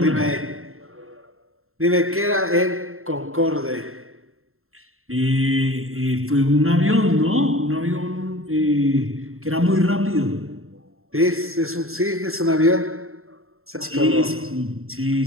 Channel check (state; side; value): late; left; 0.62 ms